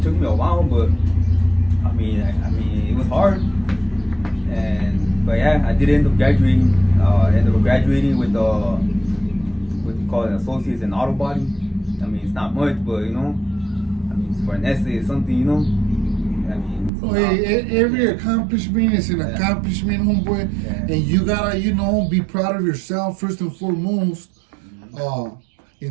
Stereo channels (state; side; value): drops out; left; at 16.9 s